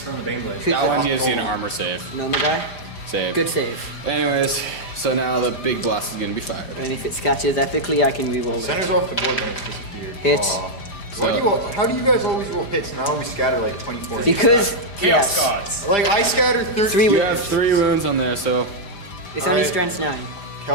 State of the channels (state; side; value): late; right; 5.0 ms